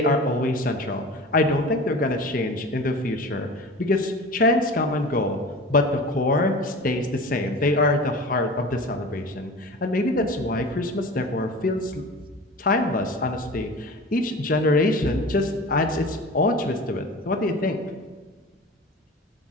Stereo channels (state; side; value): normal; both; correlation 0.36